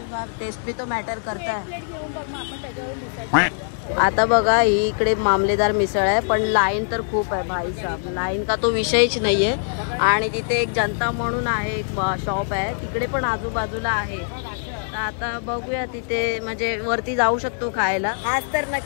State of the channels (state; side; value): silent; right; digital silence